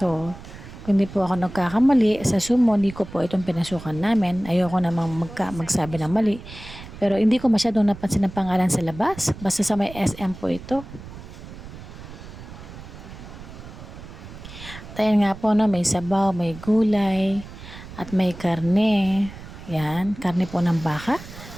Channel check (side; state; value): right; noise; rumble, 15 dB below the sound